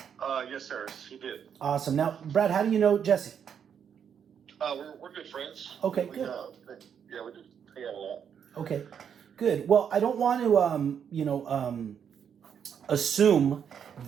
Yes, sir. He did. Awesome. Now, Brad, how do you know Jesse? We're good friends. Okay, we, good. Yeah, we do hang out a lot. Okay, good. Well, I don't want to, assume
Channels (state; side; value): quieter; left; 7.9 dB